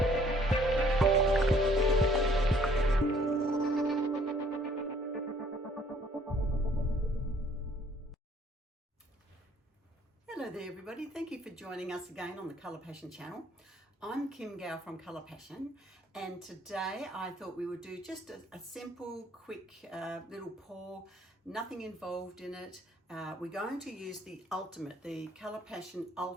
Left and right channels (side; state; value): both; normal; correlation 0.60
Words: there everybody, thank you for joining us again on the Colour Passion channel. I'm Kim Gow from Colour Passion, and today I thought we would do just a simple, quick little pour, nothing involved in it. We're going to use the Colour Passion